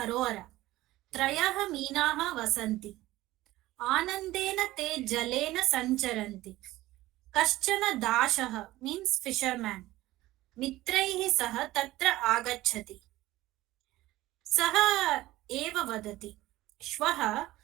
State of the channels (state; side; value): quieter; left; 17.0 dB